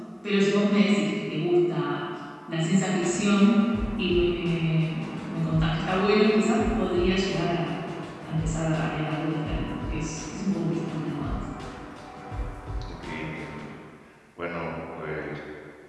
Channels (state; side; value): identical; both; correlation 1.00